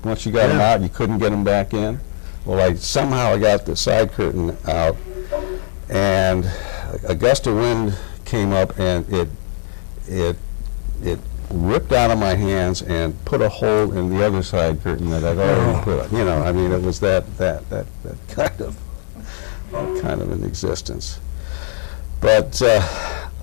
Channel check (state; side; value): silent; right; digital silence